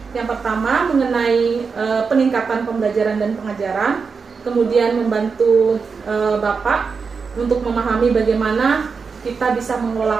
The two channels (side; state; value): left; quieter; 5.2 dB